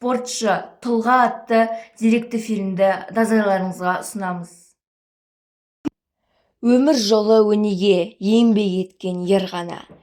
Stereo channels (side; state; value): both; identical; correlation 1.00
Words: тұлға атты деректі фильмді назарларыңызға ұсынамыз. Өмір жолы өнеге еңбек еткен ер ғана,